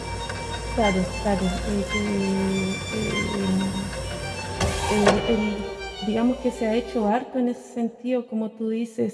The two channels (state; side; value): identical; both; correlation 1.00